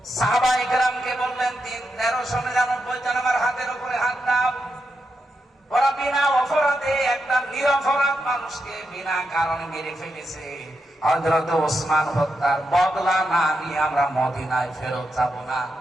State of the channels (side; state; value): both; normal; correlation 0.85